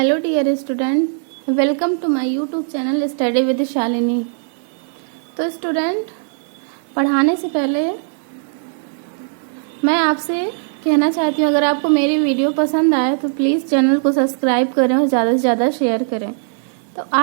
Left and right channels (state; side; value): silent; left; digital silence